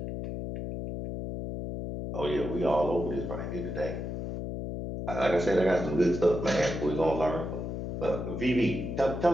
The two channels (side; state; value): left; noise; hum, 5 dB below the sound